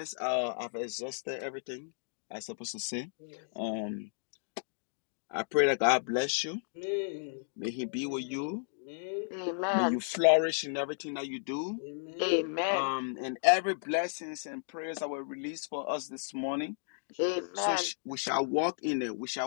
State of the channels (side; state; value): right; silent; digital silence